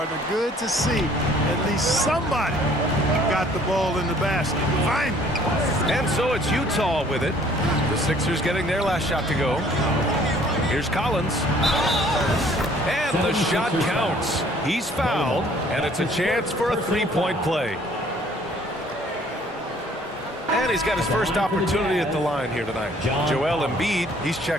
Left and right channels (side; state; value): both; normal; correlation 0.58